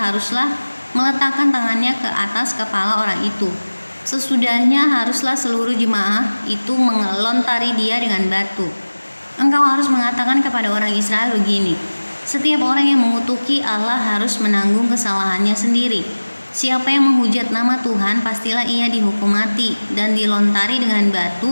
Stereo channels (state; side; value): inverted; both; correlation -1.00